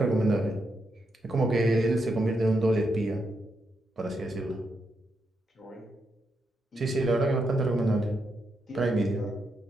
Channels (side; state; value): both; normal; correlation 0.82